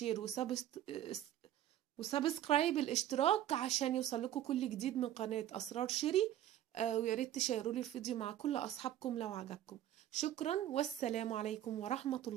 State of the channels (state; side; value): quieter; left; 12.1 dB